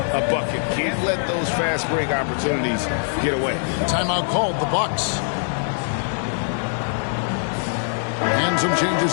a bucket. Can't let those fast break opportunities get away. Timeout called, the Bucks. And some changes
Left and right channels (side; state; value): right; silent; digital silence